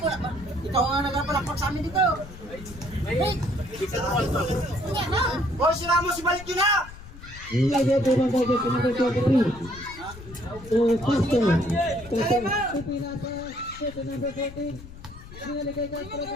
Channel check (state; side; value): noise; left; rumble, 16 dB below the sound